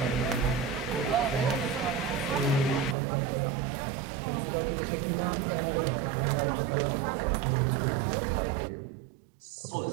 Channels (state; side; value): drops out; left; at 3.0 s